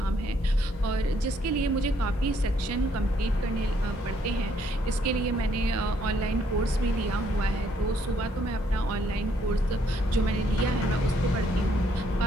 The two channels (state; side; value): normal; both; correlation 0.69